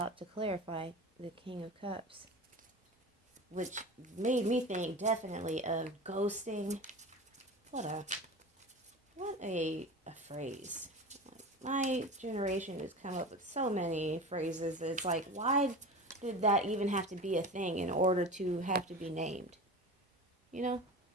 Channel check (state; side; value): normal; both; correlation 0.31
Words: to clarify the King of Cups, which made me think definitely of ghosting. What a phrase. My generation has come up with so many phrases that it's like, why did that even have to be a thing in order to have to be named? You know?